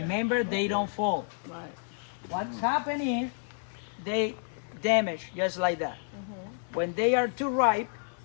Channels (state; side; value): silent; right; 58 dB below the other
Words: they don't fall. Right. What's happening is they damage just like that. When they are too ripe,